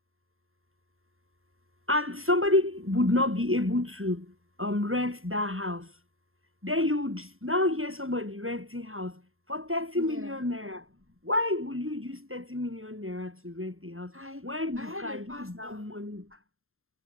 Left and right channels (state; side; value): late; left; 0.61 ms